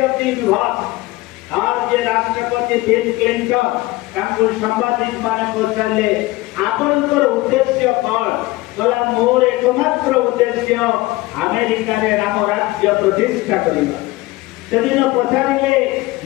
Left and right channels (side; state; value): right; quieter; 19.9 dB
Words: of the universe आज जे राष्ट्रपति बिल क्लिंटन सांबादिक माने पचारे आपनकर उद्देश्य कौन गला मोर एकमात्र उद्देश्य अमेरिका रे राम राज्य प्रतिष्ठा करबा सेदिन पचारे